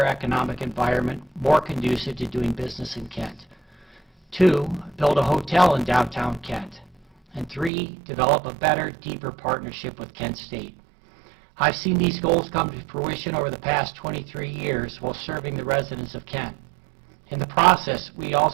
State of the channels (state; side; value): drops out; left; at 7.7 s